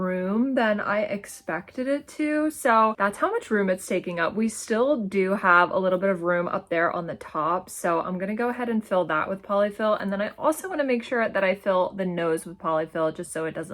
than I expected it to. So that's how much room it's taking up. We still do have a little bit of room up there on the top. So I'm gonna go ahead and fill that with polyfill. And then I also wanna make sure that I fill the nose with polyfill just so it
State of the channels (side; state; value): both; identical; correlation 1.00